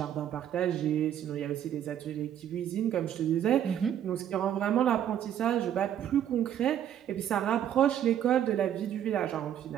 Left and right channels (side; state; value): left; quieter; 10.2 dB